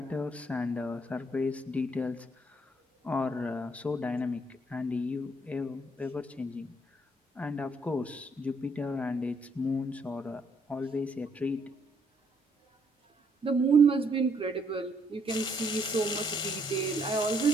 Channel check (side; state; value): both; normal; correlation 0.70